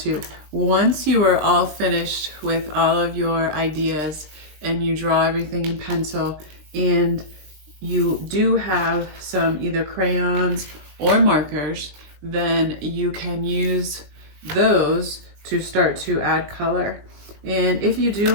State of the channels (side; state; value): left; late; 20 ms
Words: Once you are all finished with all of your ideas and you draw everything in pencil and you do have some either crayons or markers, then you can use those to start to add color. And if you do